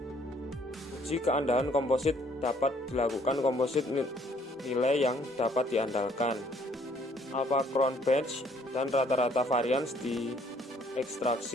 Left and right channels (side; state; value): both; normal; correlation 0.63